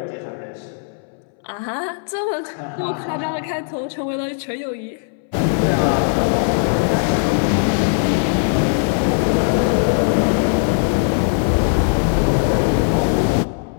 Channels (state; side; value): silent; right; 64 dB below the other